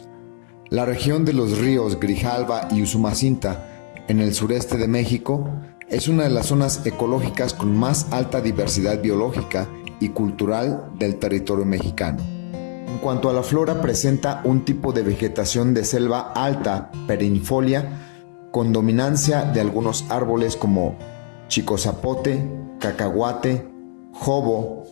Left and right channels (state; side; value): silent; right; digital silence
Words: La región de los ríos Grijalva y Usumacinta, en el sureste de México, es una de las zonas ecológicas con más alta diversidad biológica y cultural del territorio mexicano. En cuanto a la flora, presenta un tipo de vegetación de selva alta, perennifolia, con dominancia de algunos árboles como chicozapote, cacahuate, jobo